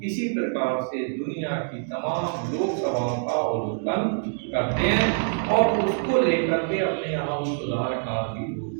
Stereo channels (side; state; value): left; silent; 61 dB below the other